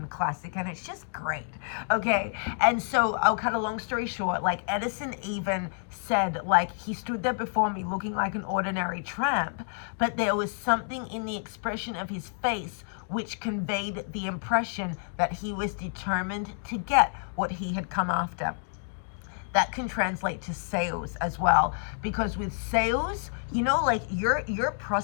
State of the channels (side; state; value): right; silent; digital silence